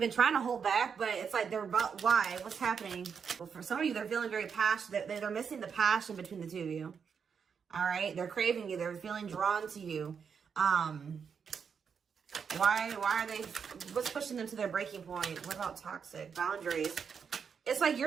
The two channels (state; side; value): quieter; left; 6.6 dB